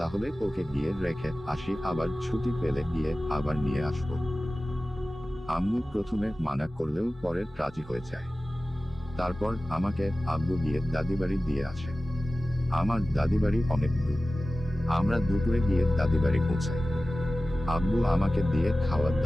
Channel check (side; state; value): both; normal; correlation 0.96